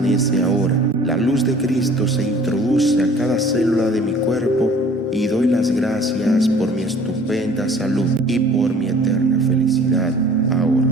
ahora. La luz de Cristo se introduce a cada célula de mi cuerpo y doy las gracias por mi estupenda salud y por mi eterna felicidad ahora.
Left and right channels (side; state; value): both; normal; correlation 0.50